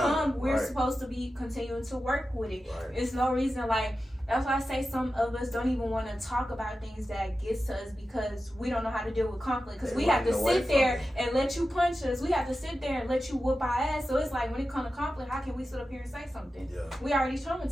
we're supposed to be continuing to work with it. It's no reason, like, that's why I say some of us don't even want to talk about things that gets to us because we don't know how to deal with conflict. Because we have to sit there and let you punch us. We have to sit there and let you whoop our ass. So it's like, when it comes to conflict, how can we sit up here and say something? We already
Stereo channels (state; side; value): normal; both; correlation 0.93